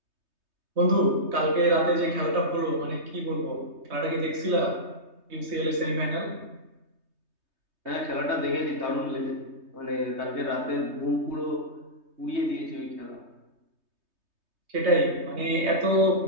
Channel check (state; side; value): late; left; 3.2 ms